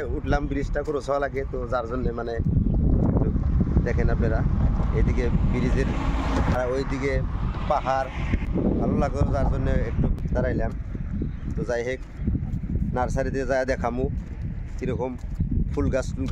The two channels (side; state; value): both; identical; correlation 1.00